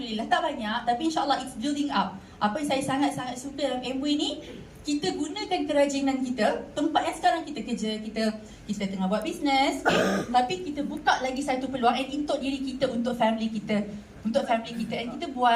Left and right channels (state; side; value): identical; both; correlation 1.00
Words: tak banyak, tapi insyaAllah it's building up. Apa yang saya sangat-sangat suka dalam Amway ni, kita gunakan kerajinan kita, tempat yang sekarang kita kerja, kita tengah buat bisnes, okay? Tapi kita buka lagi satu peluang untuk diri kita, untuk family kita. Untuk family kita, and kita